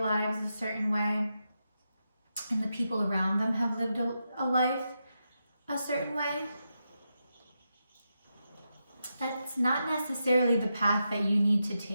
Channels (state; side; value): inverted; both; correlation -0.86